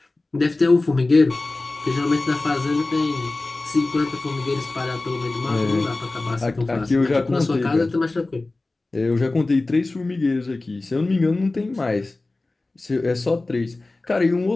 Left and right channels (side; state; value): right; quieter; 3.1 dB